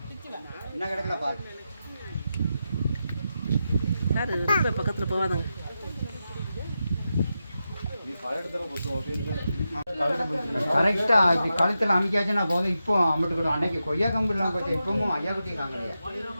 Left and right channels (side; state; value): both; inverted; correlation -0.89